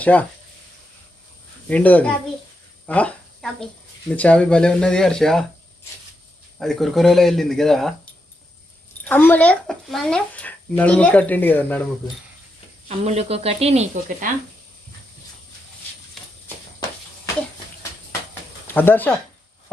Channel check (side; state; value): both; normal; correlation 0.84